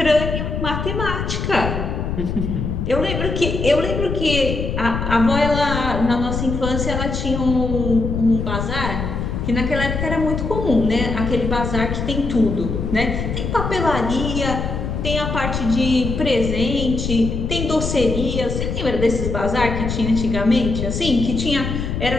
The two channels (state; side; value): noise; left; rumble, 3 dB below the sound